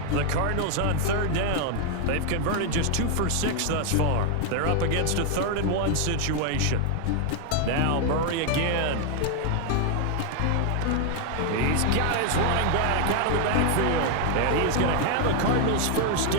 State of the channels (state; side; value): different; both; correlation 0.00